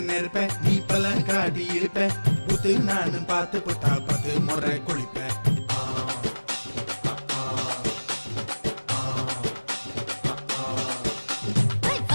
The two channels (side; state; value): both; inverted; correlation -1.00